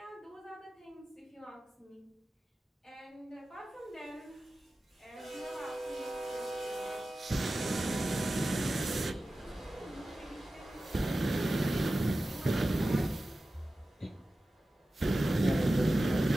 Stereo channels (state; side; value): normal; both; correlation 0.95